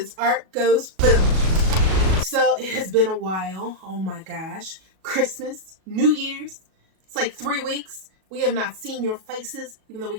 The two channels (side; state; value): left; late; 37 ms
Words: Art Goes Boom. So it has been a while. Oh my gosh. Christmas, New Year's. It's like 3 weeks. We have not seen your faces. Even though we